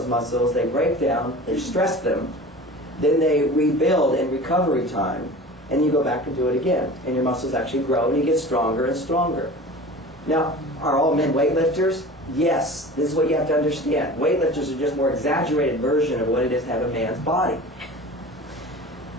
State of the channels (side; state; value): both; normal; correlation 0.38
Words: muscles, they break down, they stress them, then they rebuild in recovery time, and you go back and do it again. And your muscles actually grow, and you get stronger and stronger. Now, are all men weightlifters? Yes. This is what you have to understand. Weightlifters are just a more exaggerated version of what it is to have a man's body.